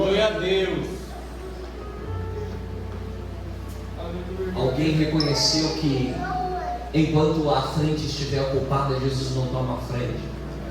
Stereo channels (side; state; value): both; identical; correlation 1.00